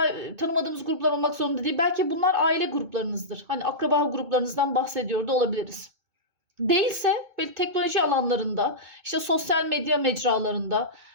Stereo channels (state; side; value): late; left; 2.2 ms